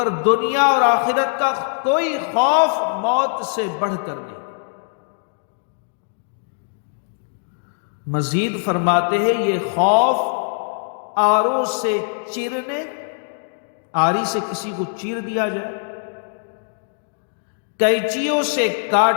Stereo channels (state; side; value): silent; right; digital silence